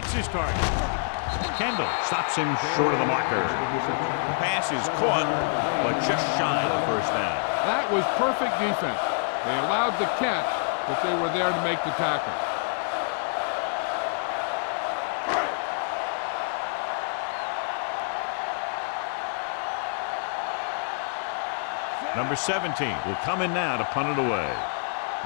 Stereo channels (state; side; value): silent; right; digital silence